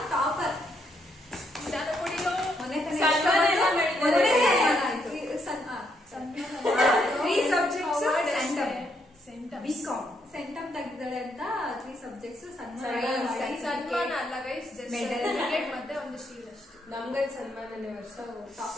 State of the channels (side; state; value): both; normal; correlation 0.75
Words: ಟಾಪರ್? ಸೆಂಟಮ್ ತೆಗ್ದಿದ್ದಾಳೆ ಅಂತ 3 ಸಬ್ಜೆಕ್ಟ್ಸ್ ಸನ್ಮಾನ ಅಲ್ಲ ಗೈಸ್, ಮತ್ತೆ ಒಂದು ಶೀಲ್ ಅಷ್ಟೇ. ನಮ್ಗೆ ಸನ್ಮಾನನೇ ವರ್ಷ